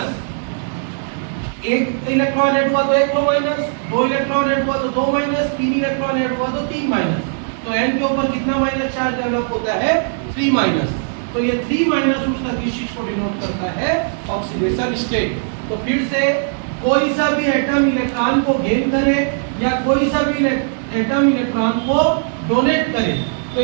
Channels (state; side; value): silent; left; digital silence